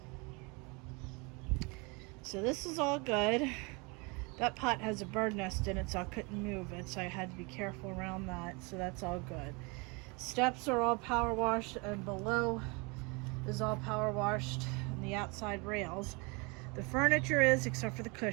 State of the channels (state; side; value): quieter; left; 29.2 dB